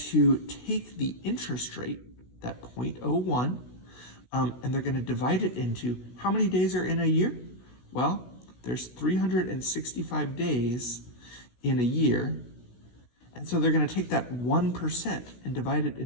take the interest rate, that 0.01, and they're going to divide it into how many days are in a year? Well, there's 365 days in a year. And so they're going to take that 1% and divide it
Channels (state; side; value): late; right; 16 ms